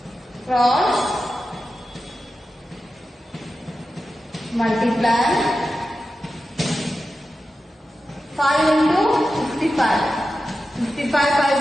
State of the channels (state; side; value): normal; both; correlation 0.92